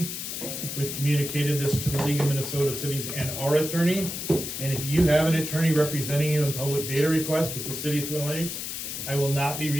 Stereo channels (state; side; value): noise; left; hiss, 5 dB below the sound